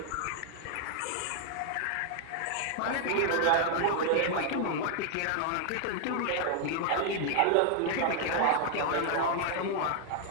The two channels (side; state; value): both; different; correlation 0.00